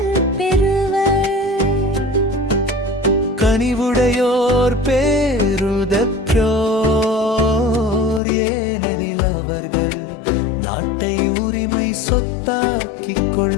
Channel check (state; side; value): drops out; right; at 8.2 s